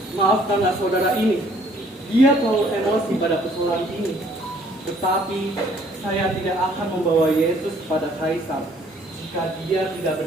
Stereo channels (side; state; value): both; normal; correlation 0.60